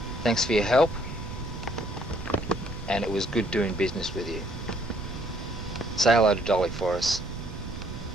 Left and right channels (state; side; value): noise; right; rumble, 10 dB below the sound